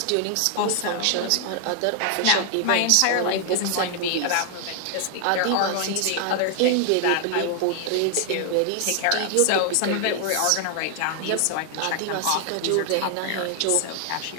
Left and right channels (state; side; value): different; both; correlation 0.00